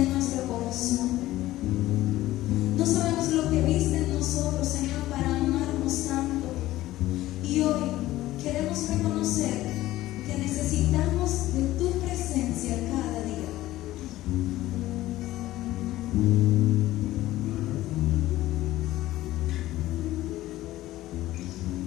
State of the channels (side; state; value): right; quieter; 15.8 dB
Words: nuestro corazón. No sabemos lo que viste en nosotros, Señor, para amarnos tanto. Y hoy queremos reconocer que necesitamos de tu presencia cada día.